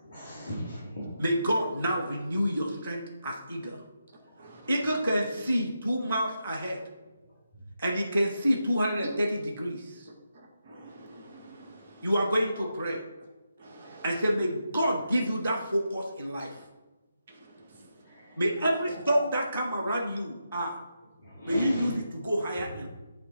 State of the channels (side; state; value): both; inverted; correlation -0.85